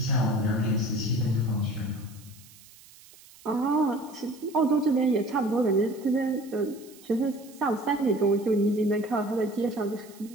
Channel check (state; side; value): noise; right; hiss, 23 dB below the sound